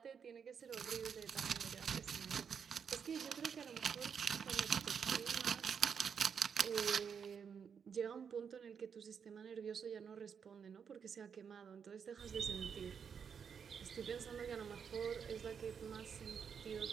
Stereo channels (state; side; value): quieter; left; 6.9 dB